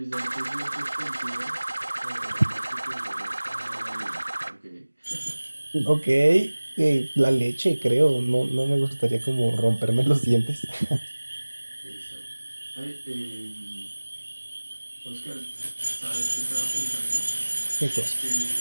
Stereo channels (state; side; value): inverted; both; correlation -1.00